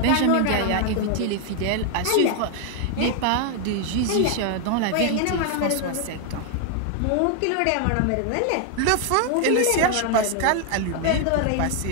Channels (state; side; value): different; both; correlation 0.00